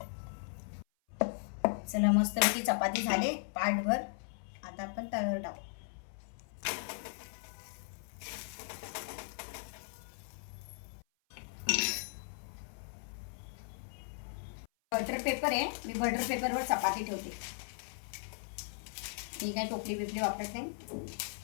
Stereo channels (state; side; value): silent; right; 53 dB below the other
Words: चला मस्तपैकी चपाती झाले पाटभर. आता आपण तव्यावर टाकू. बटर पेपर आहे, मी बटर पेपरवर चपाती ठेवते. मी काय टोपली बिपली वापरत नाही.